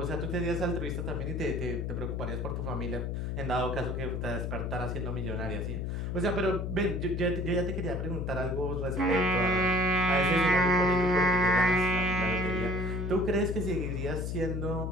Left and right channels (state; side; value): noise; left; hum, 2 dB below the sound